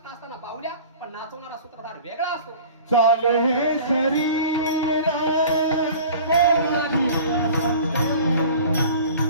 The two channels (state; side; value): inverted; both; correlation -0.43